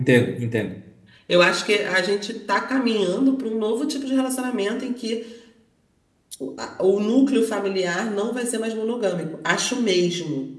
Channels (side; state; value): both; identical; correlation 1.00